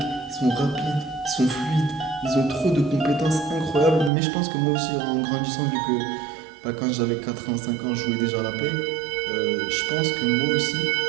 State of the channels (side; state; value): left; drops out; at 4.1 s